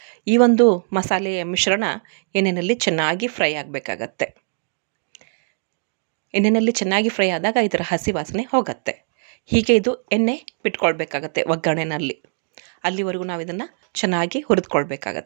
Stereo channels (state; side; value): silent; left; digital silence